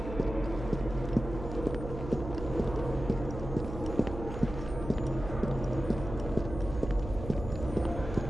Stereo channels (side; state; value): right; noise; hum, 9 dB below the sound